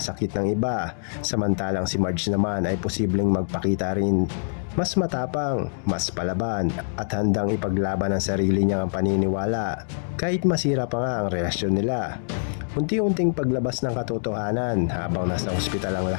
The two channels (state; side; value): silent; right; digital silence